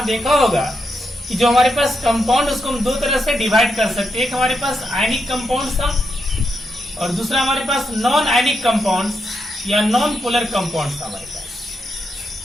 देखा होगा कि जो हमारे पास कंपाउंड उसको हम दो तरह से डिवाइड कर सकते हैं। एक हमारे पास आयनिक कंपाउंड था और दूसरा हमारे पास नॉन आयनिक कंपाउंड या नॉन पोलर कंपाउंड था हमारे पास।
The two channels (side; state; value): both; normal; correlation 0.83